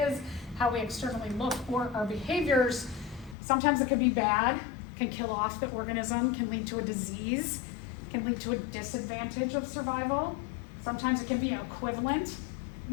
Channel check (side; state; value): right; drops out; at 3.4 s